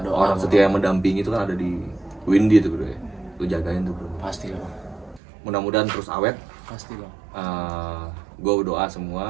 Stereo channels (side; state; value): left; drops out; at 5.2 s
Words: orang sama setia yang mendampingi itu kan ada di Windy itu bro ya. Lu jagain tuh bro. Pasti lah bang, Mudah-mudahan terus awet. pasti bang. Gue doa